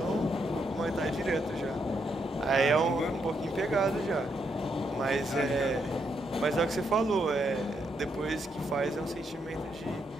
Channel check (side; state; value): both; normal; correlation 0.78